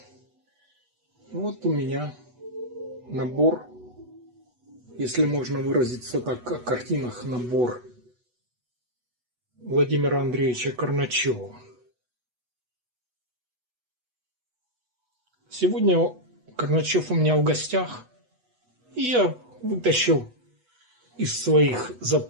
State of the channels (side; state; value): left; late; 8.1 ms